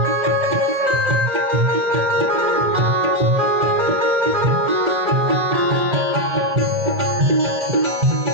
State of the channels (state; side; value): late; left; 1.9 ms